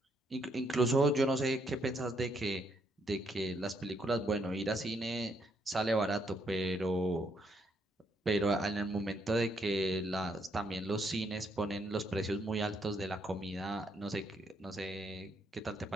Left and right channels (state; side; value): normal; both; correlation 0.73